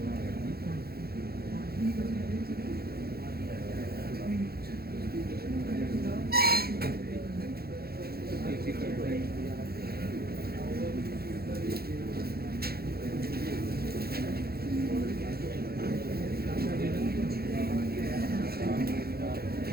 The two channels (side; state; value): left; late; 0.45 ms